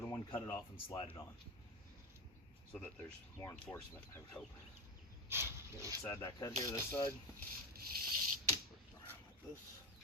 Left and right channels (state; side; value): normal; both; correlation 0.17